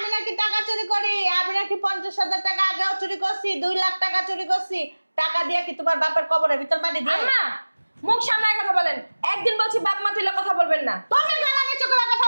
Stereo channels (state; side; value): inverted; both; correlation -1.00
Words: নাকি টাকা চুরি করি। আমি নাকি 50,000 টাকা আগেও চুরি করছি, 2 লাখ টাকা চুরি করছি। টাকা দিয়ে কি তোমার বাপের কবরের ভিতর মাটি দিয়ে? আম্মা, মুখ সামলায় কথা বলেন। একদিন বলছি বাপ মা তুলে কথা বলবেন না। তুমি গলা নিচু করে কথা